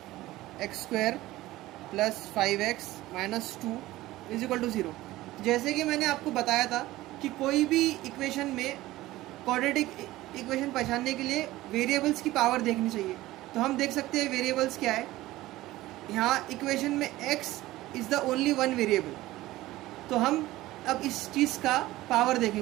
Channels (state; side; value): quieter; left; 17.1 dB